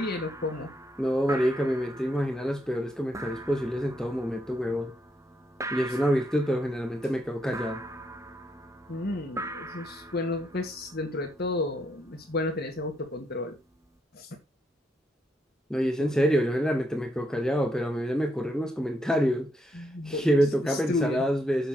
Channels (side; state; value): both; normal; correlation 0.77